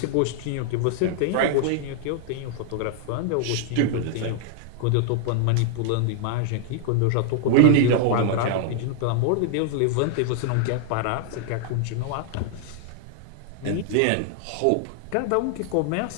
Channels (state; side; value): different; both; correlation 0.00